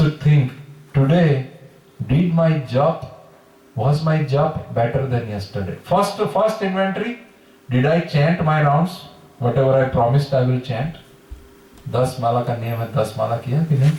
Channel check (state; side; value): identical; both; correlation 1.00